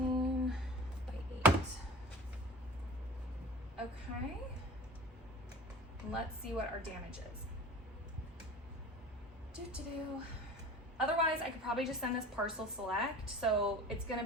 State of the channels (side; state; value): both; normal; correlation 0.38